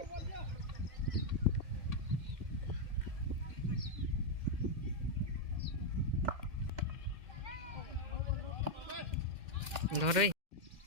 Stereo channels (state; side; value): late; left; 2.1 ms